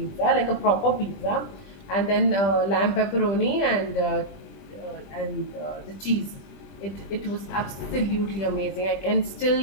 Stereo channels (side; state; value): right; late; 20 ms